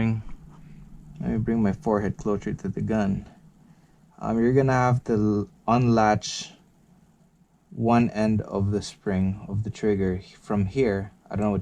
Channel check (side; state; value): both; identical; correlation 1.00